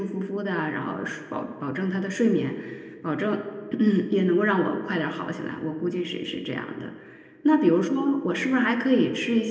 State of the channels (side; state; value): both; identical; correlation 1.00